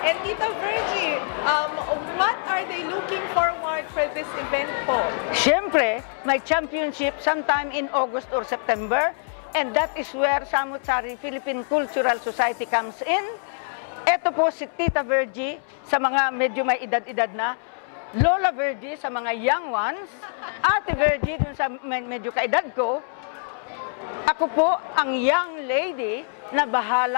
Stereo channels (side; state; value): right; silent; 62 dB below the other